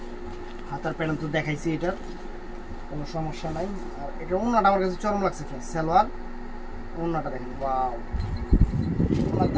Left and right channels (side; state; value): both; identical; correlation 1.00